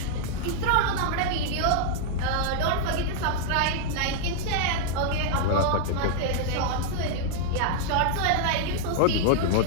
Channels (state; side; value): different; both; correlation -0.01